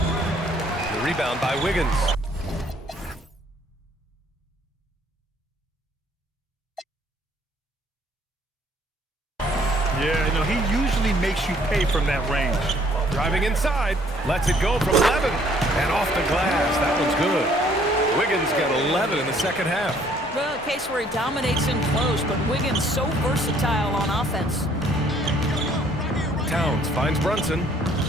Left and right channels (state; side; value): normal; both; correlation 0.62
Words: The rebound by Wiggins. Yeah, you know, he usually makes you pay from that range. Driving inside. Lets it go from 11. And off the glass. That one's good. Wiggins got 11 in the 2nd half. Well, a case where he dominates in close, but Wiggins so versatile on offense. Towns finds Brunson.